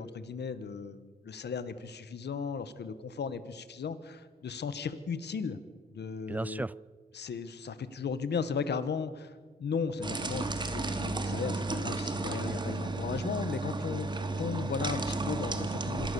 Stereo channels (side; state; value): both; normal; correlation 0.54